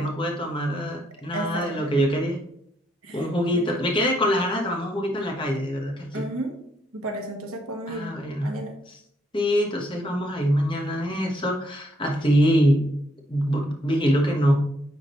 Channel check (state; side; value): normal; both; correlation 0.73